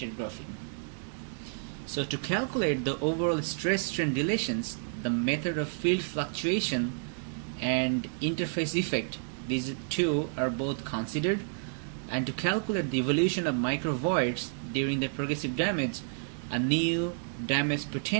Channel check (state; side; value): silent; left; digital silence